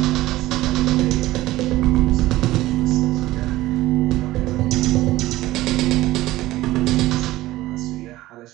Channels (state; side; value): quieter; left; 16.9 dB